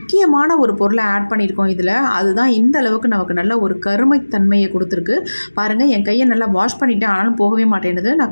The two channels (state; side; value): inverted; both; correlation -1.00